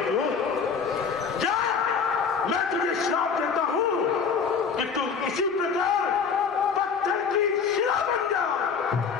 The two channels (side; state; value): right; quieter; 6.0 dB